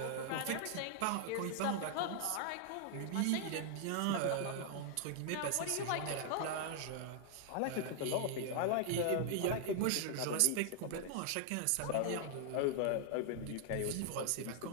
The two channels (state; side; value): different; both; correlation 0.00